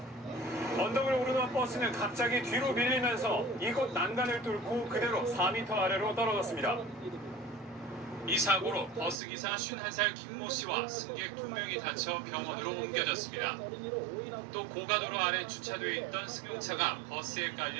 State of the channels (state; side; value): drops out; left; at 9.2 s